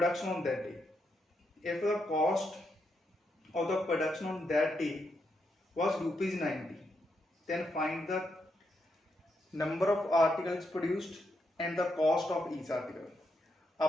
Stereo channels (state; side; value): normal; both; correlation 0.81